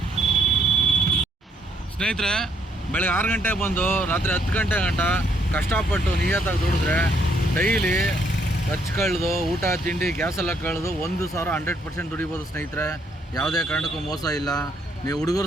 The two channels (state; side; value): normal; both; correlation 0.70